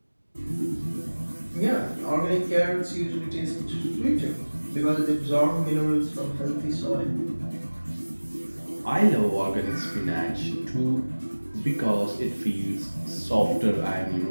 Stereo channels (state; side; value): inverted; both; correlation -1.00